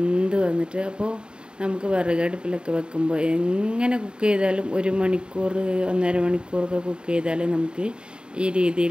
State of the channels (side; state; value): left; late; 0.050 ms